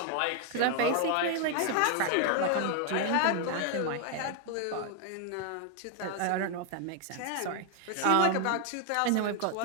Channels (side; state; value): both; different; correlation 0.00